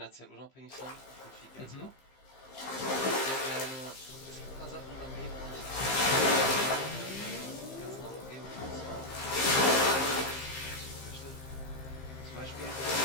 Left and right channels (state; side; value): late; right; 15 ms